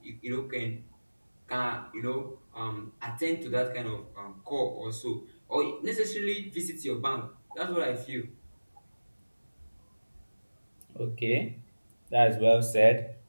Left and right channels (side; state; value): both; inverted; correlation -1.00